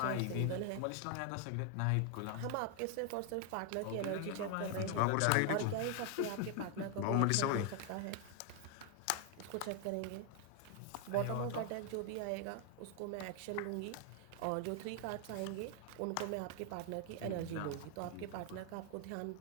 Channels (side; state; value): both; different; correlation 0.00